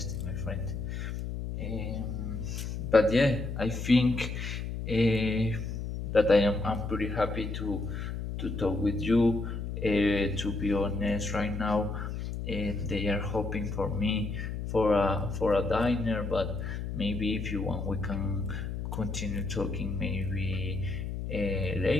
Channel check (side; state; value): left; noise; hum, 5 dB below the sound